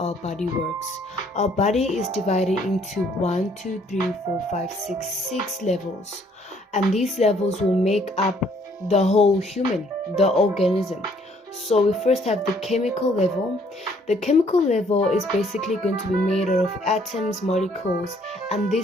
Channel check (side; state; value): both; normal; correlation 0.64